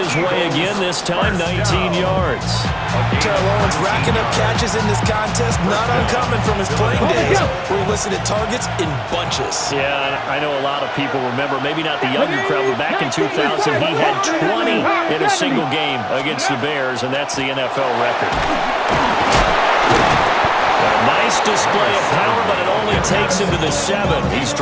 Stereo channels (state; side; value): identical; both; correlation 1.00